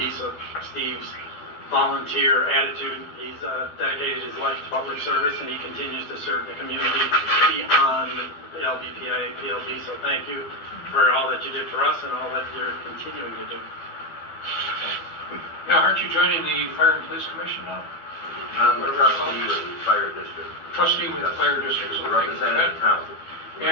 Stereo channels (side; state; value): right; late; 12 ms